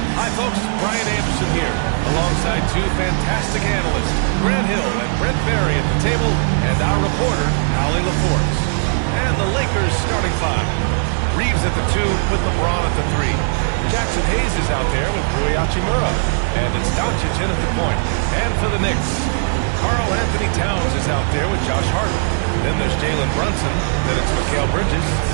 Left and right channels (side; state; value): left; silent; digital silence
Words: Hi folks, Brian Anderson here alongside two fantastic analysts, Grant Hill and Brent Barry at the table, and our reporter, Allie LaForce. And the Lakers starting five. Reeves at the 2 with LeBron at the 3. Jackson Hayes is out there with Rui Hachimura. And it's Doncic in at the point. And for the Knicks, Karl Anthony Towns is out there with Josh Hart. Then there's Jalen Brunson. Then it's Mikal Bridges.